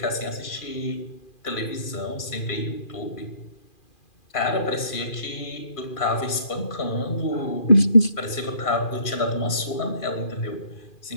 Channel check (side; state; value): right; late; 2.4 ms